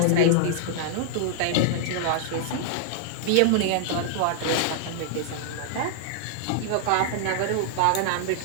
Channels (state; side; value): different; both; correlation -0.01